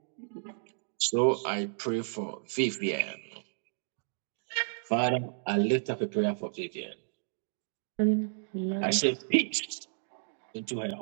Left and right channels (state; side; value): silent; left; digital silence